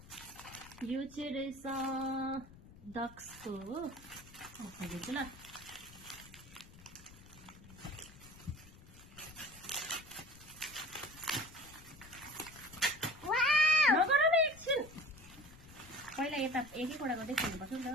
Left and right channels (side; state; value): left; noise; rumble, 20 dB below the sound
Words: यो चाहिँ रहेछ डक्सको हो, म खोलिदिन्छु ल। पहिला यता एक-एकवटा गर्दै खोल्नुपर्छ नि त।